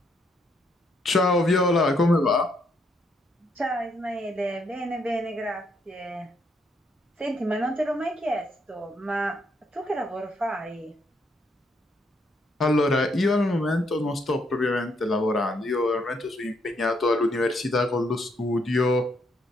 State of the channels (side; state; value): both; normal; correlation 0.73